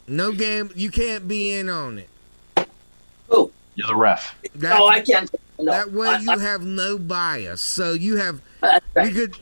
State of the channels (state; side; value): inverted; both; correlation -1.00